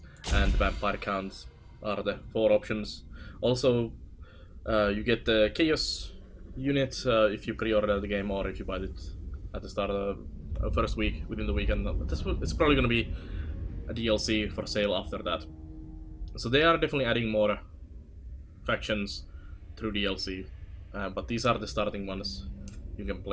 and the Vampire Counts are the 4 options. Also, you get the Chaos unit if you pre-order the game or if you buy it at the start of the first week, within the weekend. It's probably going to be a DLC for sale after that. So they are definitely adding more factions through DLC, but these are the starting ones you can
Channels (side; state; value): both; identical; correlation 1.00